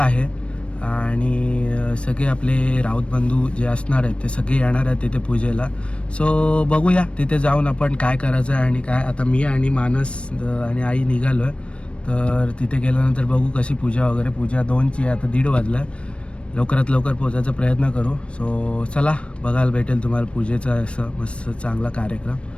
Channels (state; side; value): late; right; 0.060 ms